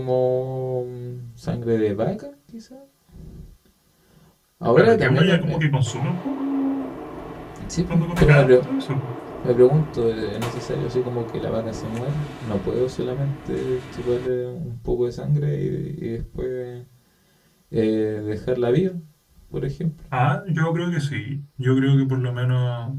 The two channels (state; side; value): identical; both; correlation 1.00